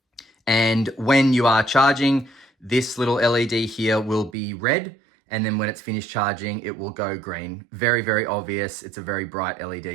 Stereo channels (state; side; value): drops out; left; at 4.4 s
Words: And when you are charging, this little LED here will be red, and then when it's finished charging, it will go green. Very, very obvious. It's a very bright